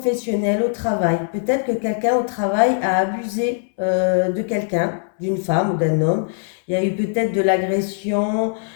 au travail. Peut-être que quelqu'un au travail a abusé de quelqu'un, d'une femme ou d'un homme. Il y a eu peut-être de l'agression.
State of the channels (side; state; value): right; silent; 65 dB below the other